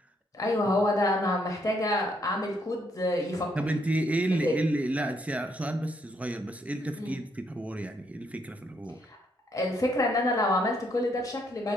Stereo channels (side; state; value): both; normal; correlation 0.73